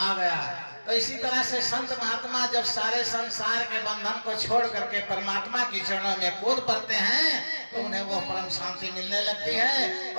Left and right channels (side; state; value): both; inverted; correlation -1.00